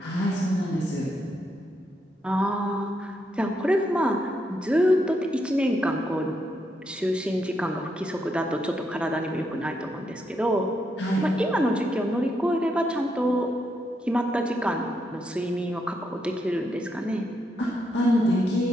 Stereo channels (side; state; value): both; normal; correlation 0.80